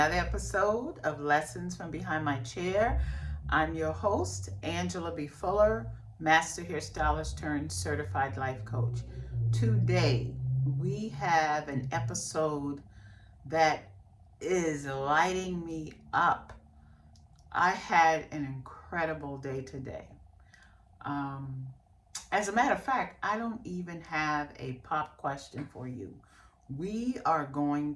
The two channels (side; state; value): both; identical; correlation 1.00